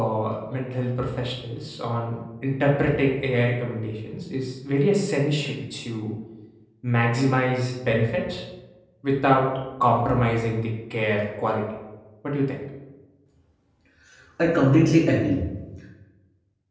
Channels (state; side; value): identical; both; correlation 1.00